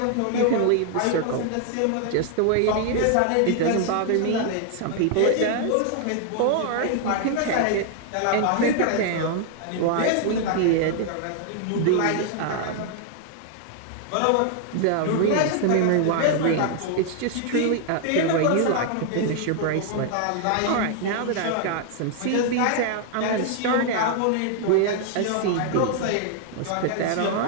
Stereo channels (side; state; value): both; different; correlation 0.00